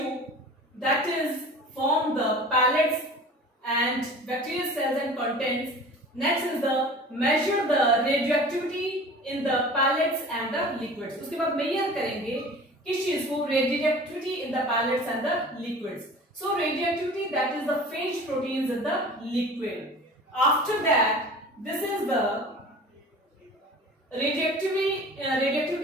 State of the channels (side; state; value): both; normal; correlation 0.41